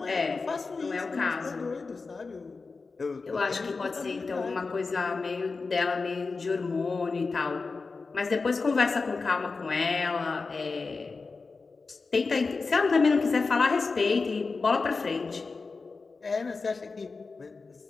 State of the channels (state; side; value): quieter; right; 4.2 dB